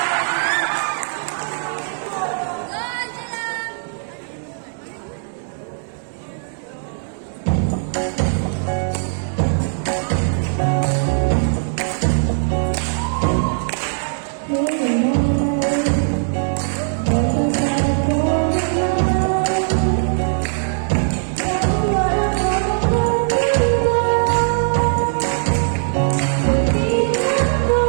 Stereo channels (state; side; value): silent; left; 66 dB below the other